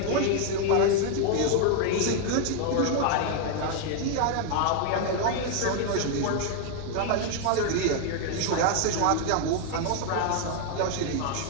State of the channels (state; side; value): different; both; correlation 0.00